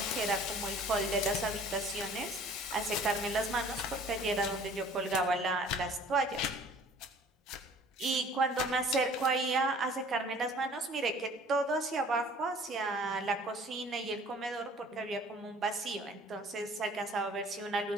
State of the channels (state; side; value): normal; both; correlation 0.51